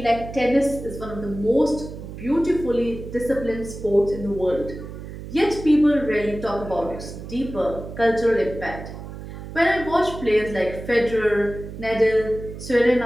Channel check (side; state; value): right; noise; hum, 11 dB below the sound